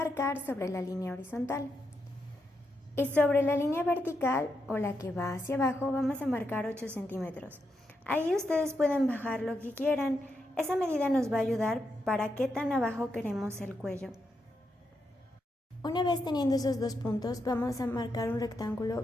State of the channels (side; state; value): both; normal; correlation 0.83